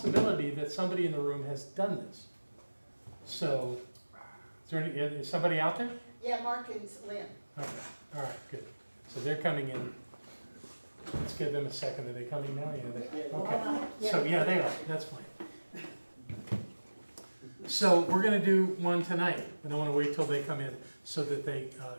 that somebody in the room has done this. So, is somebody out there? Yeah, Mark and Lynn. Okay, all right, good. So they're coming in. Let's give them a second. Are they coming now? Yeah, okay. So, yeah, they are. That's fine. So we're going to do one tonight, and I want to wait till they come in so that they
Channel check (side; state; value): both; inverted; correlation -1.00